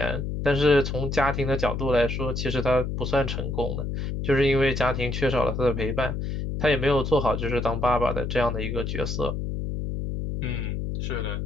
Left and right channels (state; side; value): noise; left; hum, 3 dB below the sound